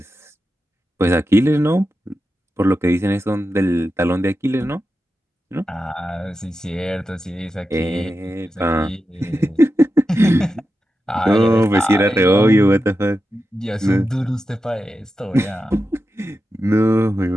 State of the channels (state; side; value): normal; both; correlation 0.90